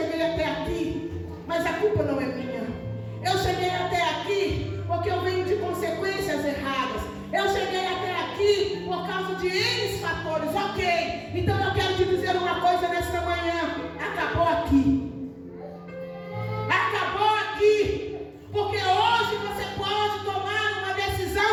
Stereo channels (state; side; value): identical; both; correlation 1.00